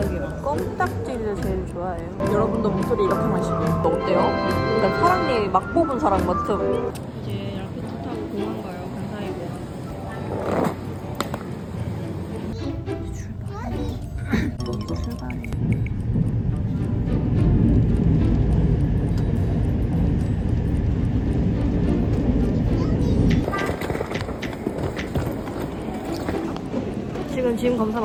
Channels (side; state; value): both; identical; correlation 1.00